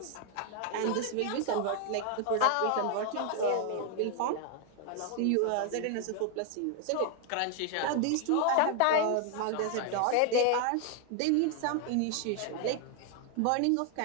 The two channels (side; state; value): both; different; correlation 0.00